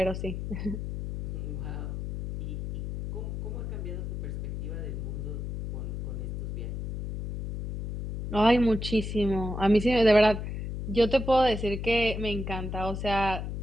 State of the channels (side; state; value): left; noise; hum, 5 dB below the sound